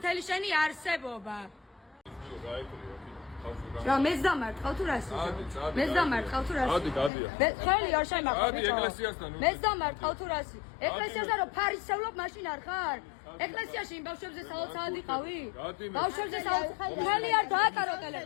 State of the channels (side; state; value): right; drops out; at 7.1 s